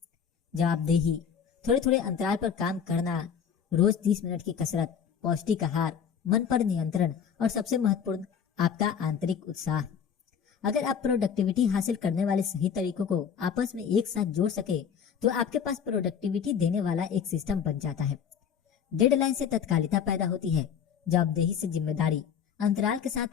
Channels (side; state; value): right; quieter; 7.5 dB